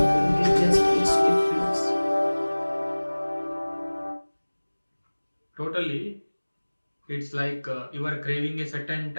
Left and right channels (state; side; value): inverted; both; correlation -1.00